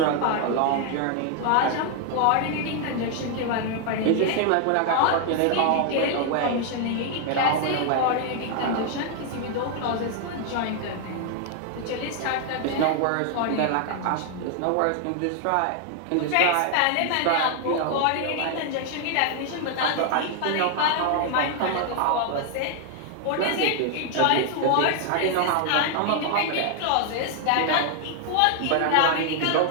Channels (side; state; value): both; different; correlation 0.00